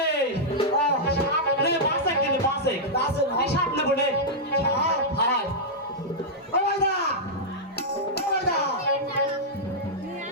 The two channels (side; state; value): both; normal; correlation -0.08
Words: রে বাসে কেন বাসে এই সাপ নেবো রে হাই